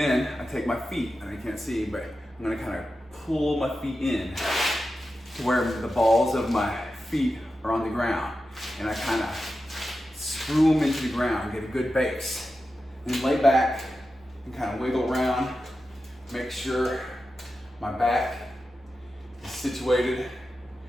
I take my feet, and you can't see, but I'm gonna kind of pull my feet in to where the balls of my feet are on the ground. And I kind of screw them into the ground, get a good base. Then lay back and kind of wiggle around, make sure my back is situated.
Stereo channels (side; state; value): both; normal; correlation 0.91